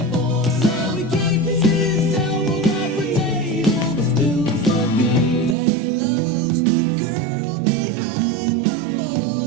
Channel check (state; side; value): drops out; left; at 5.6 s